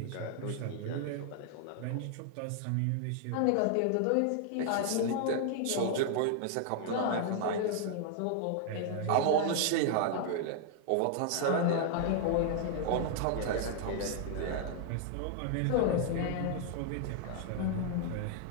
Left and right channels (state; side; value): different; both; correlation 0.00